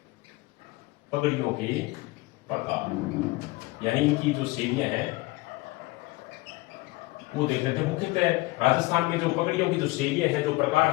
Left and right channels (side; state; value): right; quieter; 21.7 dB